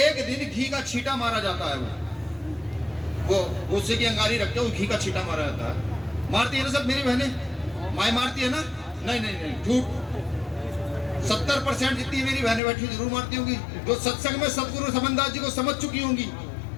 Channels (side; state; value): right; drops out; at 12.6 s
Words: दिन घी का छींटा मारा जाता है, वो गुस्से की अंगारी रखते हो, घी का छींटा मारा जाता है। मारती है ना सब मेरी बहनें? माए मारती है ना? नहीं नहीं नहीं, झूठ। 70% जितनी मेरी बहनें बैठी जरूर मारती होंगी। जो सत्संग में सदगुरु समनदास जी को समझ चुकी होंगी,